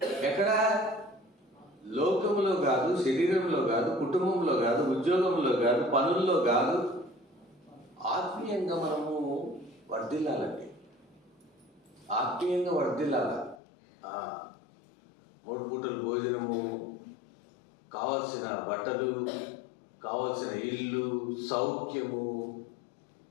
ఎక్కడ? లోకంలో కాదు, శరీరంలో కాదు, కుటుంబంలో కాదు, ఉద్యోగంలో కాదు, పనుల్లో కాదు. ఆత్మీయంగా మనము వర్ధిల్లాలండి, ఆత్మీయంగా వర్ధిల్లాల. 3 పూటలు భోజనము, కావలసిన బట్టలు, కావలసిన ఇల్లు, సౌఖ్యము,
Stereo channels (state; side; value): drops out; right; at 13.6 s